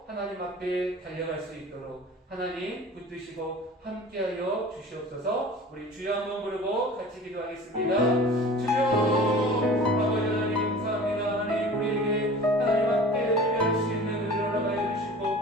하나님 앞에 달려갈 수 있도록 하나님 붙드시고 함께하여 주시옵소서. 우리 주여 한번 부르고 같이 기도하겠습니다. 주여 아버지 하나님 감사합니다. 하나님 우리에게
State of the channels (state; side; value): normal; both; correlation 0.41